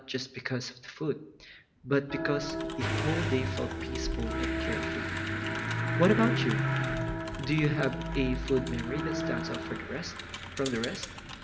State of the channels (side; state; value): both; identical; correlation 1.00